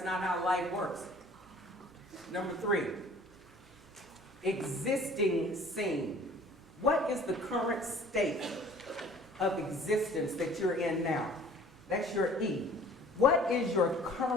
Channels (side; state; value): both; normal; correlation 0.50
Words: not how life works. Number 3, existing scene. What is the current state of existence that you're in now? That's your E. What is your